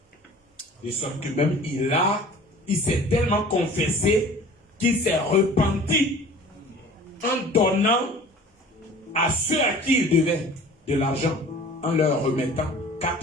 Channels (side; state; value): both; normal; correlation 0.45